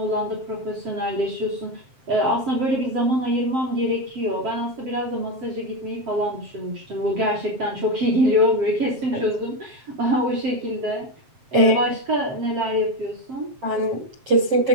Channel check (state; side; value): late; left; 7.6 ms